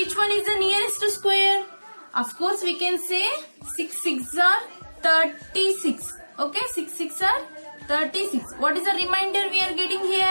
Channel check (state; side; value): inverted; both; correlation -1.00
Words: one is the nearest to square? Of course we can say 6 6 are 36. Okay, 6 6 are 36. What is the remainder we are getting